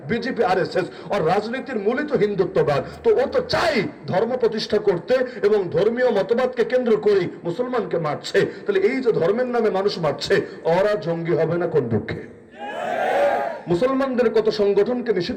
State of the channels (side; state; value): both; identical; correlation 1.00